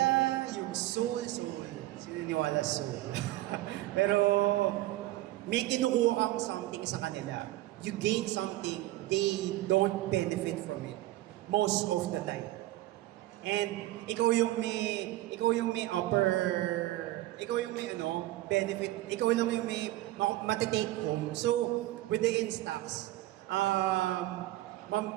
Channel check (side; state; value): left; quieter; 16.4 dB